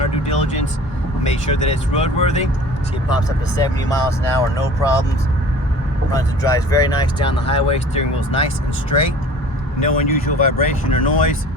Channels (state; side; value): normal; both; correlation 0.45